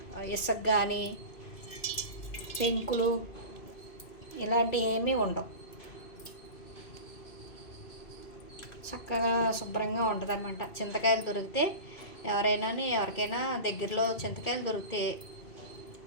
ఇసుక కానీ పెంకులు ఇలాంటివి ఏమీ ఉండవు. చక్కగా శుభ్రంగా ఉంటుంది అన్నమాట. చింతకాయలు దొరికితే ఎవరికైనా దగ్గరలో చింతకాయలు దొరికితే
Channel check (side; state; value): right; late; 2.3 ms